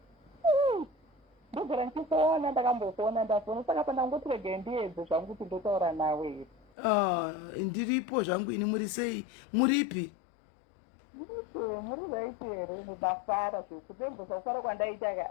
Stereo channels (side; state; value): right; drops out; at 6.7 s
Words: Ndiripo zvangu ini muri sei? Muripi? Muri bafara zvekudembosa kufara kwandaita ka.